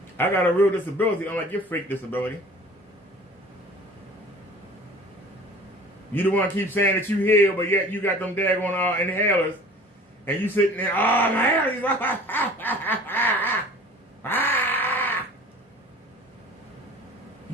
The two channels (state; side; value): normal; both; correlation 0.45